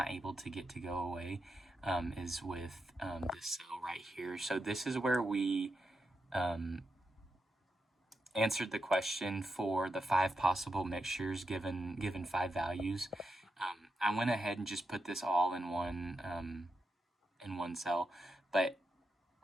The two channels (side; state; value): both; normal; correlation 0.86